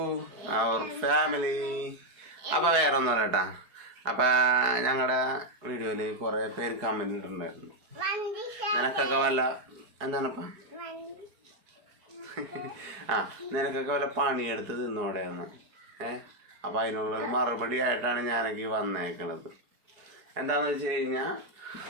our family. അപ്പോൾ വേറെ ഒന്നും കേട്ടാ. അപ്പം ഞങ്ങളുടെ വീഡിയോയിൽ കുറേ പേര് കമൻറ്റ് ഇട്ടിട്ടുണ്ടായിരുന്നു, നിനക്കൊക്കെ വല്ല എന്താണപ്പം നിനക്കൊക്കെ വല്ല പണിയെടുത്ത് തിന്നോടെയെന്ന്. അപ്പോൾ അതിനുള്ളൊരു മറുപടി ആയിട്ടാണ് ഞാനൊക്കെ വന്നേക്കണത്. എന്താണെന്ന് വെച്ച് കഴിഞ്ഞാൽ,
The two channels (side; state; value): left; late; 4.7 ms